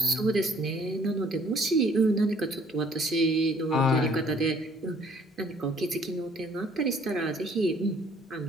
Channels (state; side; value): normal; both; correlation 0.59